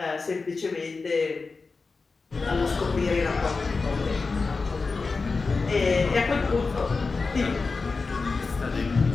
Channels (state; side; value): quieter; right; 4.2 dB